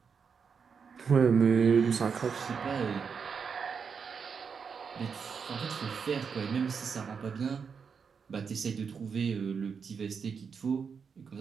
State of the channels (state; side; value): quieter; left; 6.1 dB